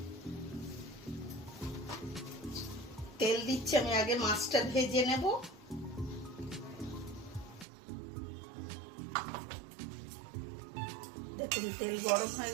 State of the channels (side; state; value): left; drops out; at 7.7 s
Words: তেল দিচ্ছি। আমি আগে মাছটা ভেজে নেব। দেখুন তেল গরম হয়ে